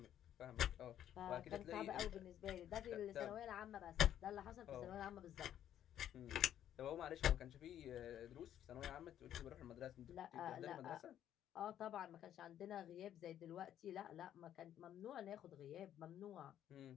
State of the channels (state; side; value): quieter; right; 10.8 dB